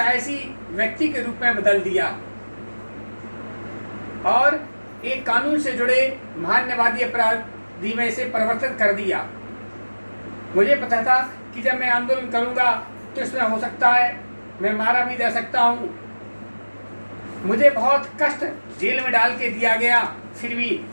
व्यक्ति के रूप में बदल दिया और एक कानून से जुड़े मानववादी अपराधी में से परिवर्तित कर दिया। मुझे पता था कि जब मैं आंदोलन करूंगा तो इसमें हो सकता है मैं मारा भी जा सकता हूँ। मुझे बहुत कष्ट जेल में डाल के दिया गया, फिर भी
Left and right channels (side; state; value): both; inverted; correlation -1.00